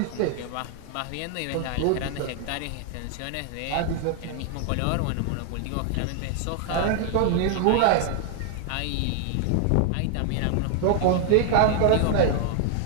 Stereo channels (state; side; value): different; both; correlation 0.00